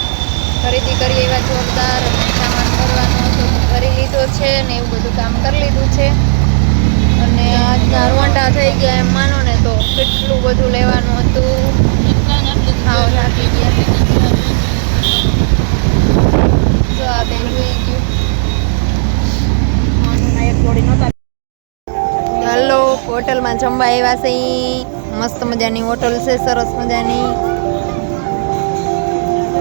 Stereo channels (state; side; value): silent; left; digital silence